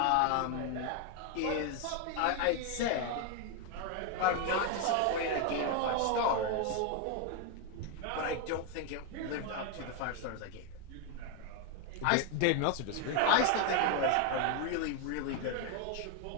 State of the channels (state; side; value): different; both; correlation 0.01